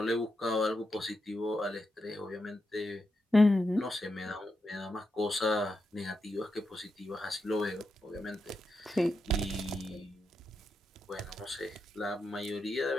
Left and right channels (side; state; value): both; normal; correlation 0.86